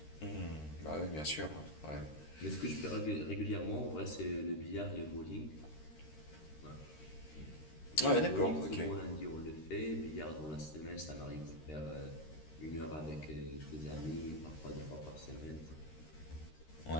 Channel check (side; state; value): right; late; 13 ms